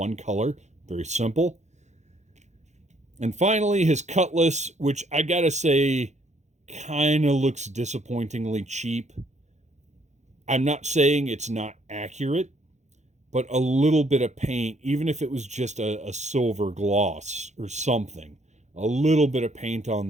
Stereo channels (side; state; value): left; late; 0.33 ms